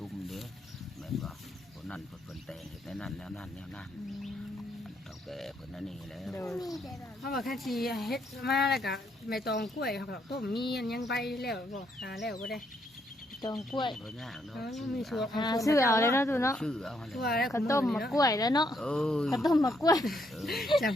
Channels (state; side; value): normal; both; correlation 0.74